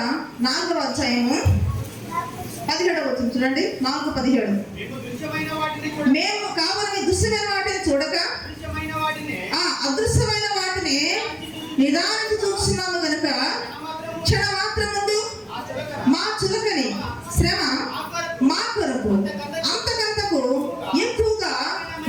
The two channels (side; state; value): both; identical; correlation 1.00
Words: 4వ అధ్యాయము 17వ వచనం చూడండి. 4:17 మేము కావాలని దృశ్యమైన వాటిని చూడక అదృశ్యమైన వాటిని నిదానికి చూస్తున్నాము గనుక క్షణమాత్రం ముందు మా చులకని శ్రమ మా కొరకు అంతకంతకు ఎక్కువగా